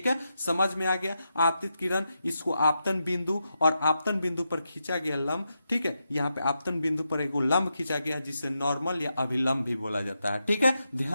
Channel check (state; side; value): inverted; both; correlation -0.86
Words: है, समझ में आ गया। आपतित किरण, इसको आपतन बिंदु और आपतन बिंदु पर खींचा गया लंब। ठीक है, यहाँ पे आपतन बिंदु पर एक लंब खींचा गया जिसे नॉर्मल या अभिलंब भी बोला जाता है। ठीक है,